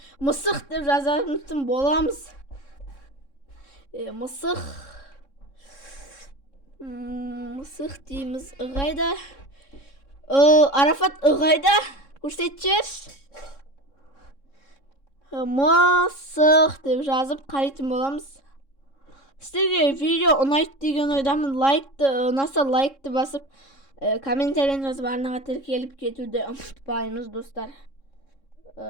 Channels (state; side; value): late; right; 3.6 ms